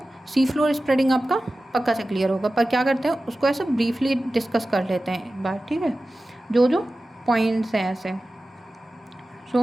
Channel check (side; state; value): both; normal; correlation 0.95